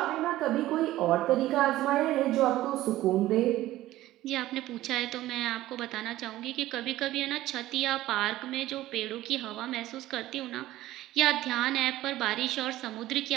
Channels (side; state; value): left; quieter; 15.5 dB